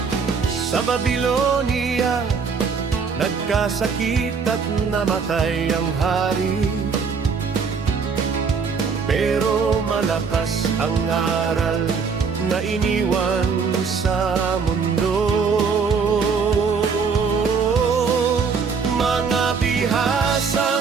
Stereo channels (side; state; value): left; quieter; 5.5 dB